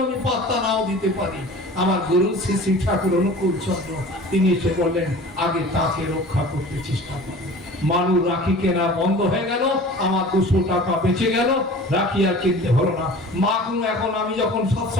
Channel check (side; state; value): both; normal; correlation 0.41